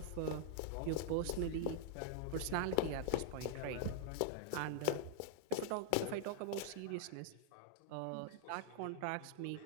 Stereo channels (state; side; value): different; both; correlation -0.01